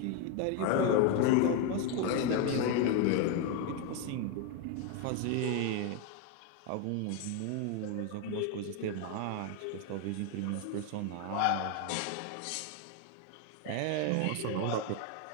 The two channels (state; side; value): different; both; correlation 0.02